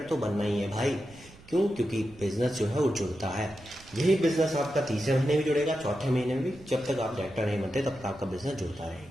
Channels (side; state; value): right; noise; rumble, 22 dB below the sound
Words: तो बनना ही है भाई। क्यों? क्योंकि बिजनेस जो है वो जुड़ता है। यही बिजनेस आपका तीसरे महीने भी जुड़ेगा, चौथे महीने में भी। जब तक आप डायरेक्टर नहीं बनते तब तक आपका बिजनेस जुड़ता